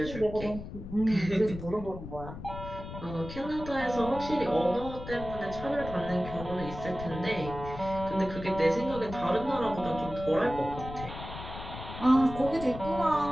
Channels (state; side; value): noise; left; rumble, 10 dB below the sound